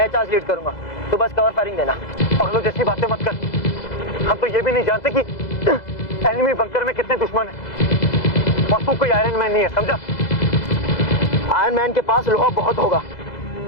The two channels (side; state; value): right; late; 2.0 ms